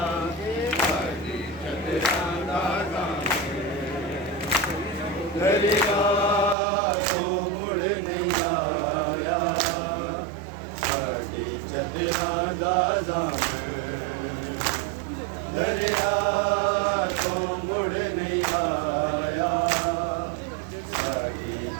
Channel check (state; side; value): drops out; left; at 6.6 s